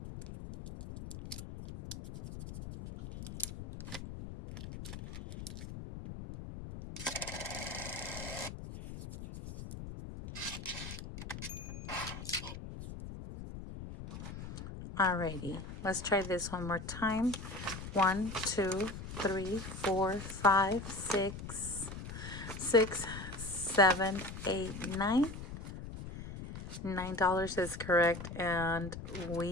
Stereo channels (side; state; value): left; noise; rumble, 10 dB below the sound